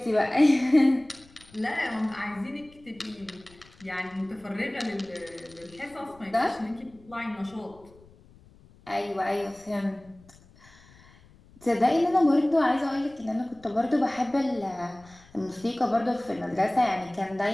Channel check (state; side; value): noise; left; rumble, 26 dB below the sound